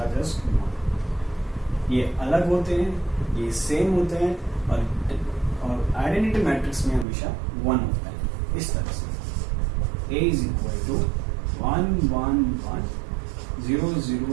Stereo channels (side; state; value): left; drops out; at 7.1 s